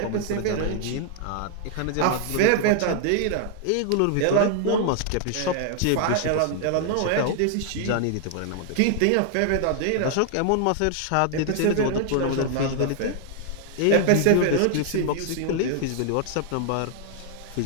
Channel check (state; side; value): different; both; correlation 0.00